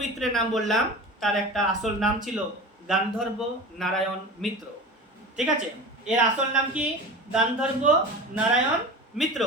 মিত্রের নাম বললাম, তার একটা আসল নাম ছিল গান্ধর্ব নারায়ণ মিত্র। ঠিক আছে, এর আসল নাম কি? গান্ধর্ব নারায়ণ মিত্র।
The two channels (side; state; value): both; normal; correlation 0.32